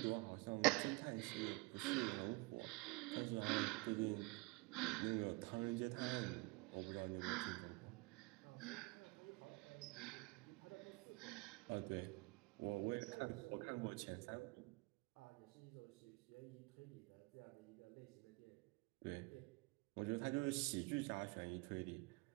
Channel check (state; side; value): quieter; left; 26.5 dB